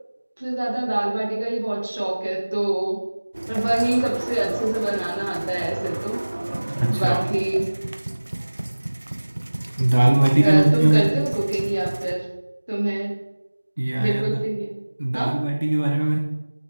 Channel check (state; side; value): inverted; both; correlation -1.00